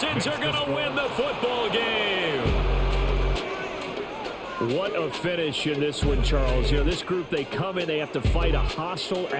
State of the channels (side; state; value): both; identical; correlation 1.00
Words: are going to win the football game. What a finish in this one, Charles. You know, this group, they come in, they have to fight a hostile